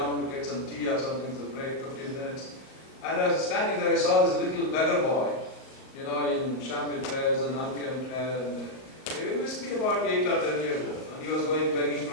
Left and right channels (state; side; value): late; right; 38 ms